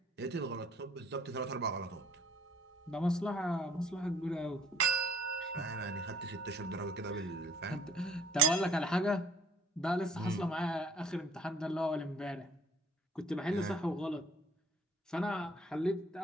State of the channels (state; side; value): normal; both; correlation 0.57